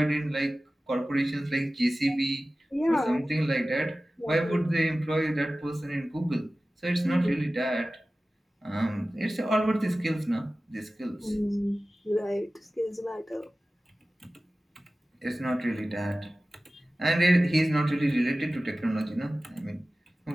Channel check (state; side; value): normal; both; correlation 0.96